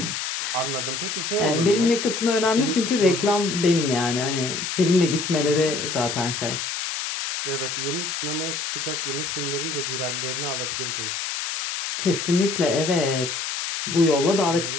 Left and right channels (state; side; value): noise; left; hiss, 3 dB below the sound